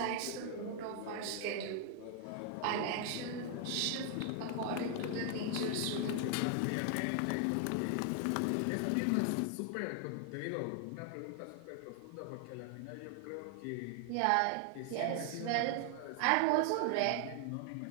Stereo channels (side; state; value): both; different; correlation 0.00